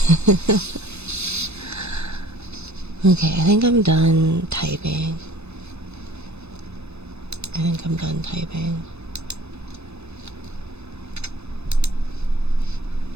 Okay, I think I'm done typing. I think I'm done typing.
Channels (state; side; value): late; left; 0.80 ms